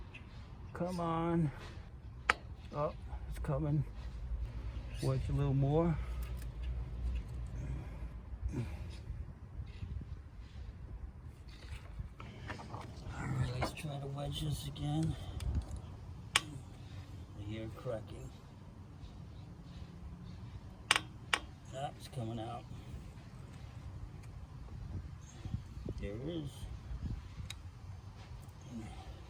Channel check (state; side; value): identical; both; correlation 1.00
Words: Come on. Oh, it's coming. Wedge a little more. Alright, let's try to wedge this again. I hear it cracking. Ah, it's coming out. There it is.